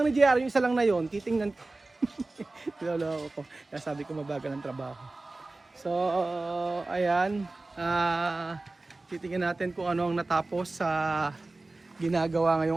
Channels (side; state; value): left; quieter; 3.1 dB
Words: ni JR, yung isa lang na yon, titingnan ko. Niloloko ko. Kaya sabi ko mabagal ang trabaho. So, ayan. Titingnan natin kung ano ang natapos sa ginagawa